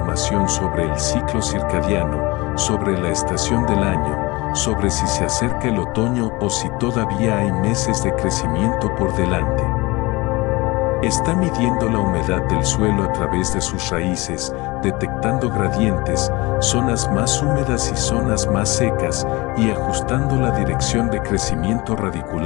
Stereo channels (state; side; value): quieter; right; 23.0 dB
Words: sobre el ciclo circadiano, sobre la estación del año, sobre si se acerca el otoño o si todavía hay meses de crecimiento por delante. Está midiendo la humedad del suelo a través de sus raíces, detectando gradientes, zonas más húmedas y zonas más secas, y ajustando la dirección de crecimiento